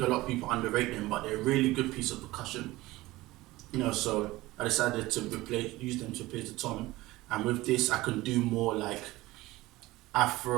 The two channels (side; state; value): left; quieter; 18.9 dB